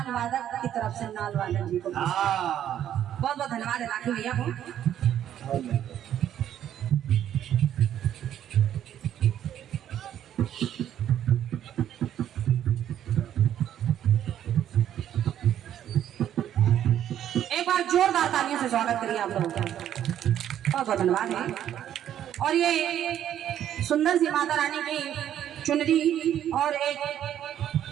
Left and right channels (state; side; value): quieter; left; 10.7 dB